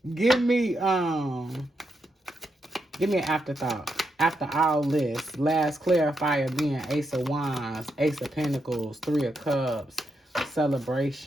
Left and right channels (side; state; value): both; normal; correlation 0.83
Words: Give me an afterthought. After all this, last clarifier being Ace of Wands, Ace of Pentacles, Three of Cups,